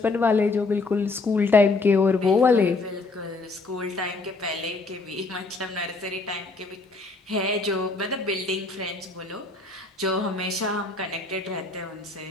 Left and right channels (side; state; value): right; quieter; 3.6 dB